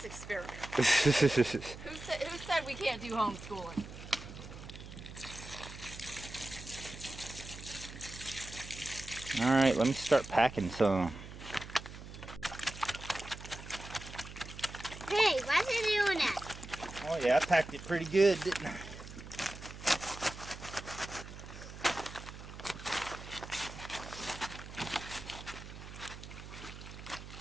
experiment. Who said we can't do homeschooling? All right, let me start packing some. Hey, why's it doing that? Oh yeah, I packed it pretty good, didn't I?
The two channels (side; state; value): right; noise; hum, 13 dB below the sound